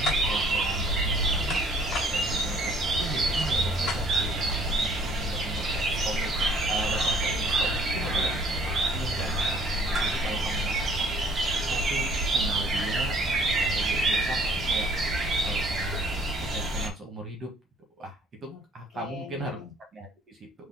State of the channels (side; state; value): both; normal; correlation 0.57